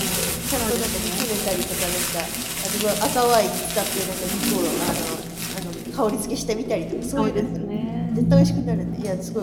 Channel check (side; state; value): both; identical; correlation 1.00